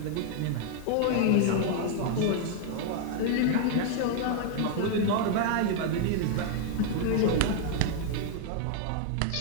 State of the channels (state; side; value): different; both; correlation 0.00